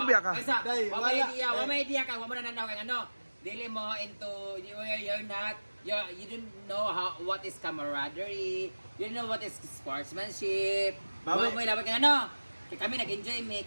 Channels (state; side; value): inverted; both; correlation -1.00